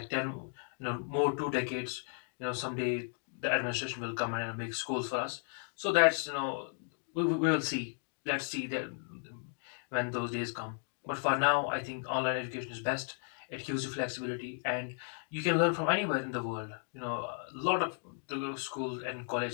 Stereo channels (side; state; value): right; silent; 55 dB below the other